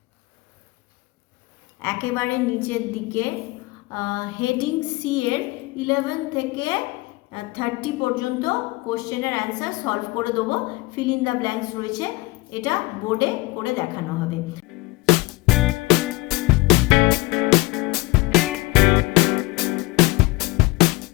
একেবারে নিচের দিকে হেডিং সি এর 11 থেকে 30 পর্যন্ত কোশ্চেনের অ্যান্সার সলভ করে দেবো। ফিল ইন দ্য ব্ল্যাঙ্কস রয়েছে, এটা বোর্ডে করে দেখানো হবে।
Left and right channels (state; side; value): quieter; right; 22.7 dB